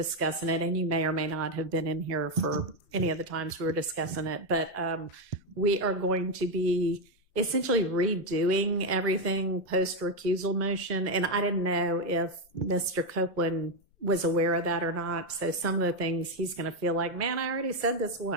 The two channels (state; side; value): normal; both; correlation 0.05